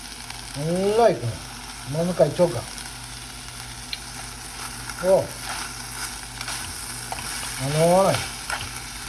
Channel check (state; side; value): identical; both; correlation 1.00